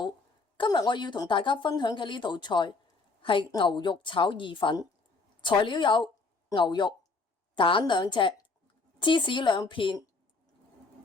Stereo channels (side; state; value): right; quieter; 3.9 dB